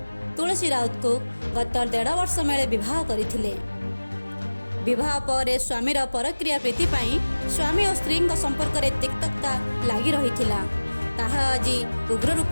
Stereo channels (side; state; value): both; inverted; correlation -1.00